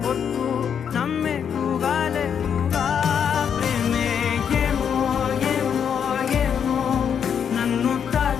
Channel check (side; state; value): right; quieter; 7.8 dB